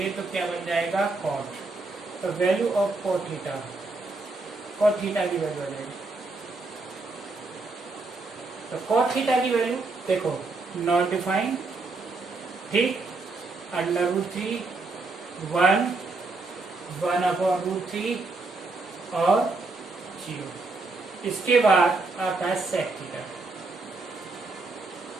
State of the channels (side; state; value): left; quieter; 3.5 dB